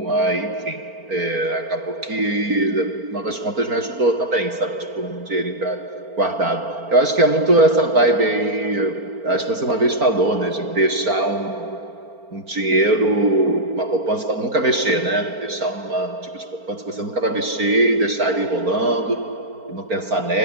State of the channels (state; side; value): late; left; 4.4 ms